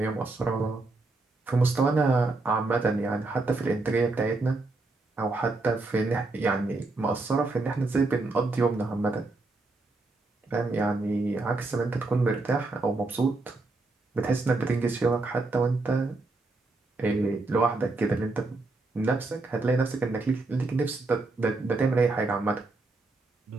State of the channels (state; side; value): quieter; left; 3.3 dB